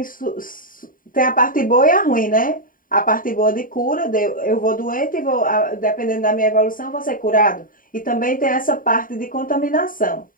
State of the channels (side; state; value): right; late; 0.40 ms